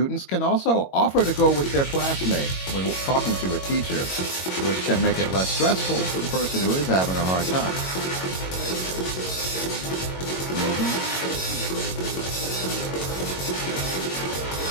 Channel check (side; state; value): right; late; 22 ms